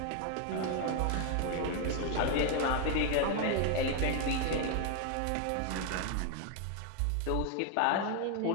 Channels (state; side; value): different; both; correlation 0.01